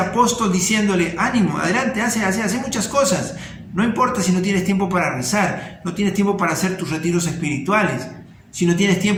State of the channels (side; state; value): both; identical; correlation 1.00